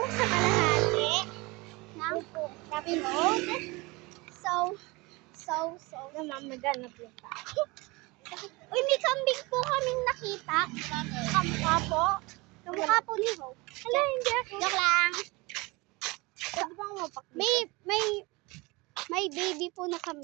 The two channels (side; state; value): left; quieter; 24.5 dB